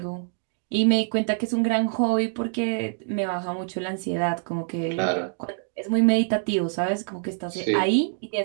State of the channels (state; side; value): silent; left; 62 dB below the other